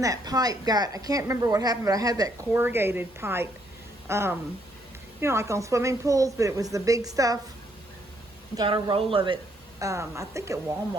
that pipe got, I can't remember what happened, but I had that corrugated pipe, you know, like on swimming pools, but it was the big stuff. Got a roll of it, I think at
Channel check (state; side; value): normal; both; correlation 0.71